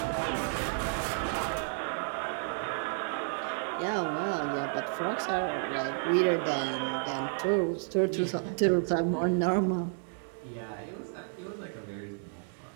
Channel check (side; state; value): left; silent; digital silence